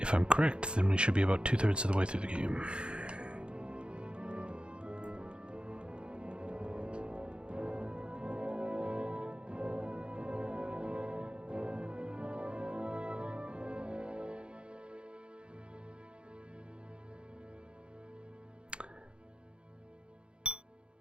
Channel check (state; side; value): late; left; 0.055 ms